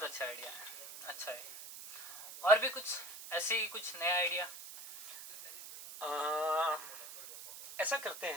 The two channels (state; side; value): noise; right; hiss, 12 dB below the sound